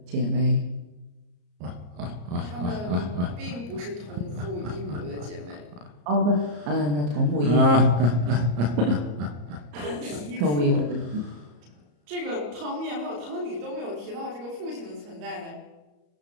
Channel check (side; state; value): left; late; 34 ms